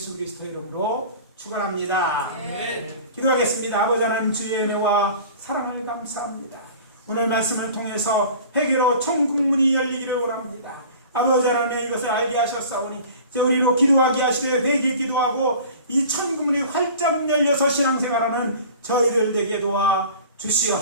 그리스도 이름으로 축원합니다. 네. 기도하겠습니다. 아버지 하나님, 주의 은혜와 사랑을 감사합니다. 오늘 말씀을 통해서 회개로 천국문이 열리기를 원합니다. 아버지 하나님, 이것을 알게 하셨사오니 이제 우리로 기도하게 하시되 회개 기도하고 이 천국문이 활짝 열려서 신앙생활하는 저희들 되게 도와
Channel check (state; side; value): inverted; both; correlation -0.43